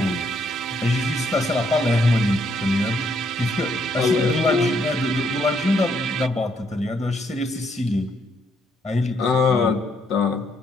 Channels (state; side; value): normal; both; correlation 0.72